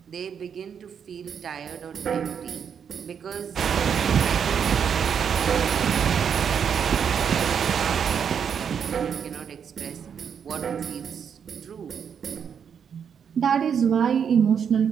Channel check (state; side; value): quieter; left; 7.5 dB